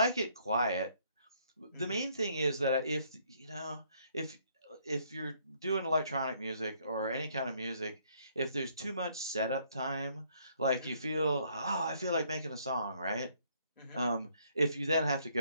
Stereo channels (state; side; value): inverted; both; correlation -0.67